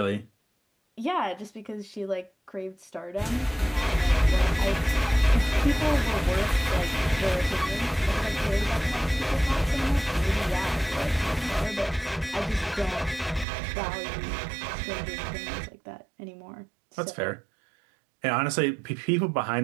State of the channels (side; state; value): left; drops out; at 13.5 s